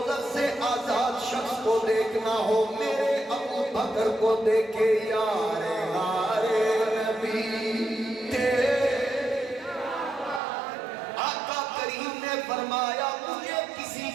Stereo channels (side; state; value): left; drops out; at 10.4 s